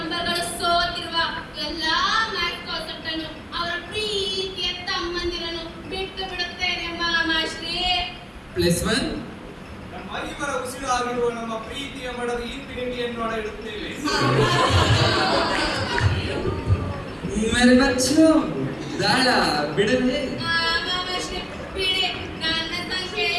ಸೋತಿರುವ ಎಲ್ಲಾ ಮ್ಯಾಥ್ ಕಾನ್ಸೆಪ್ಟ್ ಅನ್ನು ಅವರ ಪ್ರೀತಿಯ ತಮ್ಮಂದಿರನ್ನು ಬಿಟ್ಟು ಬಿಡುತ್ತೇನೆ ಮಾಮಾಶ್ರೀ. +1 ನಮ್ಮ ಐವರ ಉಸಿರಾಗಿರುವ ನಮ್ಮ ಪ್ರೀತಿಯ ಮಡದ ಇನ್ಫಿನಿಟಿಯನ್ನು ಇಡುತ್ತೇವೆ. ಮೇರೆ ಬಚ್ಚು ದಾಳ ಬಿಡಲೇ? ಮಾಮಾಶ್ರೀ ಬಿಡಿ. ನನ್ನ ಸಂಖ್ಯೆ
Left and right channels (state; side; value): identical; both; correlation 1.00